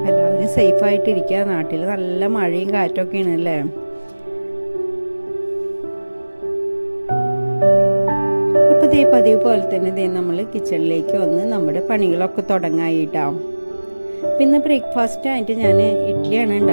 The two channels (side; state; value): both; inverted; correlation -1.00